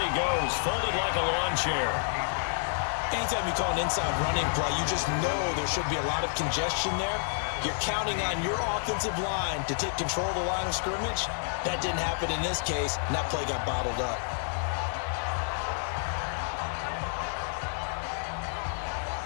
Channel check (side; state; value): right; silent; digital silence